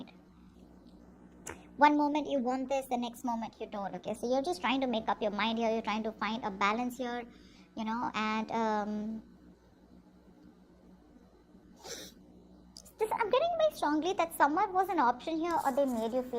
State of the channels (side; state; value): both; identical; correlation 1.00